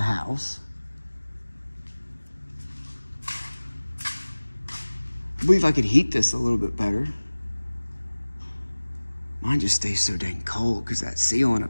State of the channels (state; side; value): inverted; both; correlation -1.00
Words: I believe I could heat this a little bit better. Mine just stays so dang cold because that ceiling